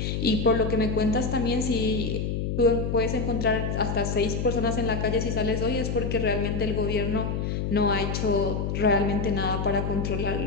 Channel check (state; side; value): noise; left; hum, 1 dB below the sound